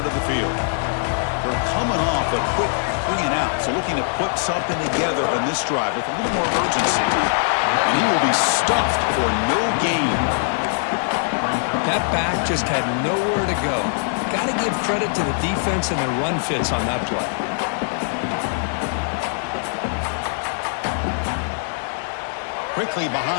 the field. They're coming off a quick 3-and-out, so looking to put something together on this drive with a little more urgency. And he will be stuffed for no gain. That back just had nowhere to go. Got to give credit to the defense and their run fits on that play. Quickly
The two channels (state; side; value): silent; right; digital silence